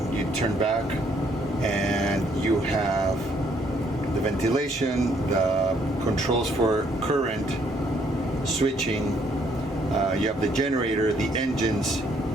you turn back and you have the ventilation, the controls for current switching, you have the generator, the engines,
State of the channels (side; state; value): both; normal; correlation 0.68